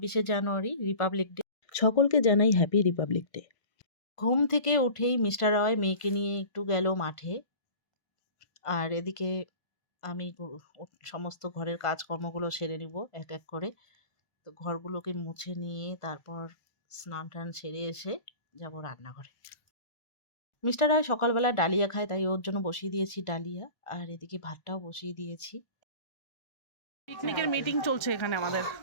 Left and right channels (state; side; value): late; right; 1.5 ms